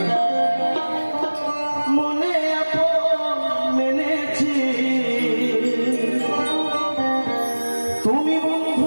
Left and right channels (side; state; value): both; inverted; correlation -1.00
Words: মনে আপন মেনেছি, তুমি